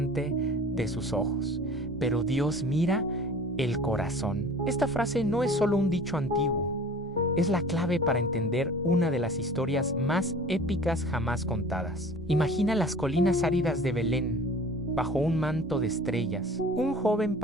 de sus ojos, pero Dios mira el corazón. Esta frase no es solo un dicho antiguo, es la clave para entender una de las historias más épicas jamás contadas. Imagina las colinas áridas de Belén, bajo un manto de estrellas. Un joven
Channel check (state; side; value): normal; both; correlation 0.44